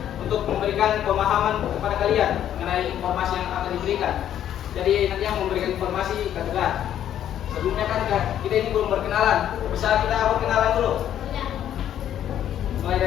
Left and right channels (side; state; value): right; quieter; 10.7 dB